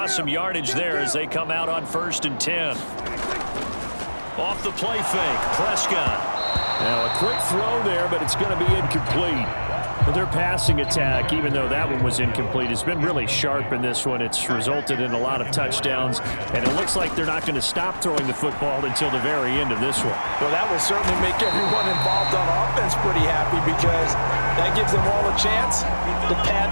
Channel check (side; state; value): both; inverted; correlation -1.00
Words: some yardage there as they come out on 1st and 10. Off the play fake, Prescott. Now a quick throw there, but it's going to be incomplete. Well, their passing attack, even though that one was incomplete, has been really sharp in this one. It's resulted in a lot of touchdowns, and it looks like they're not going to stop throwing the football until the very end of this one. Well, that will certainly make everyone involved on offense pretty happy because that gives them all a chance to pad